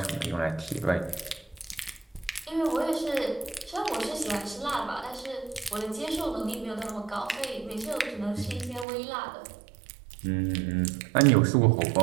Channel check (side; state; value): left; drops out; at 8.8 s